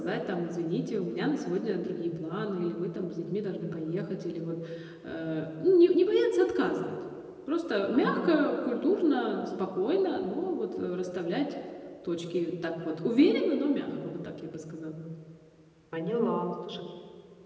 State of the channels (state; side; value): identical; both; correlation 1.00